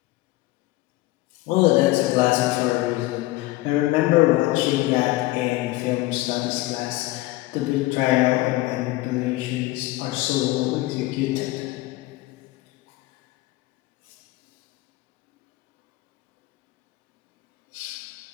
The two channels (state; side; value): quieter; right; 18.9 dB